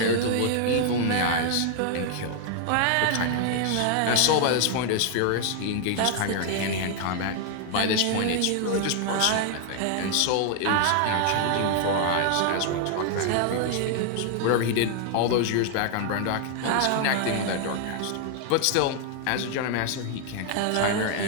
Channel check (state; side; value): different; both; correlation 0.00